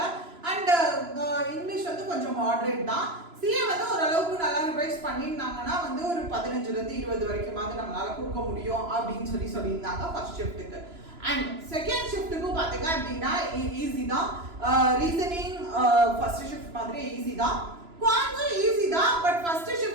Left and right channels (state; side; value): late; left; 3.0 ms